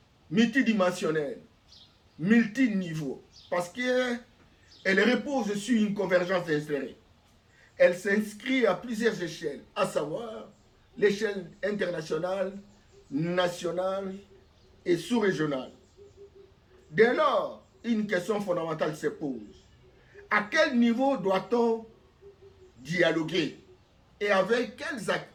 multidimensionnelle, multiniveau, parce qu'elle repose sur une convergence insérée. Elle s'inscrit à plusieurs échelles, à savoir l'échelle internationale, nationale et sous-régionale. Dès lors, une question fondamentale se pose. À quel niveau doit-on dialoguer et avec quels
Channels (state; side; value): identical; both; correlation 1.00